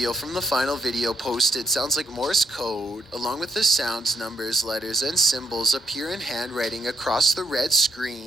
from the final video posted sounds like Morse code, along with the sounds, numbers, letters, and symbols appear in handwriting across the red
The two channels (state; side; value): normal; both; correlation 0.75